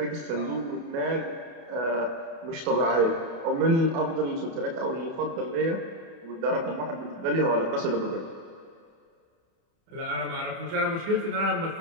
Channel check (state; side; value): late; left; 30 ms